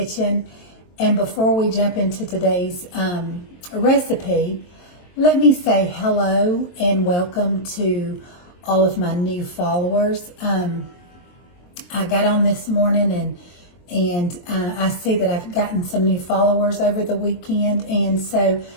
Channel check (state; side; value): late; right; 23 ms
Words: And before we jump into today's recipe, let me say hello and welcome to all of my new followers. I got on this morning and I see that I've gotten some new followers over the weekend. And so